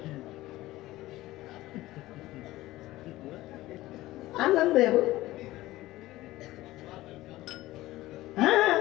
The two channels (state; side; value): quieter; right; 17.1 dB